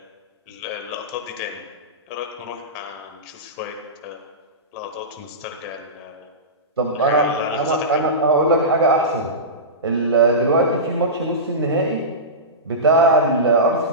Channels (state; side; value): normal; both; correlation -0.19